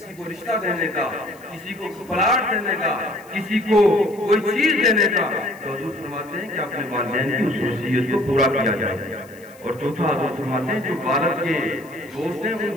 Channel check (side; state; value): left; noise; hiss, 26 dB below the sound